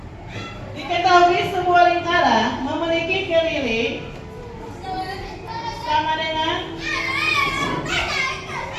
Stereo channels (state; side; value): identical; both; correlation 1.00